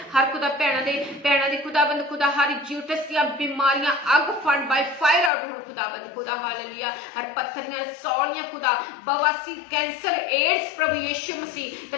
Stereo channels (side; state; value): right; drops out; at 5.3 s